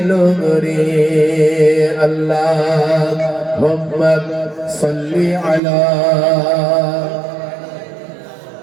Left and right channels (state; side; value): drops out; left; at 5.6 s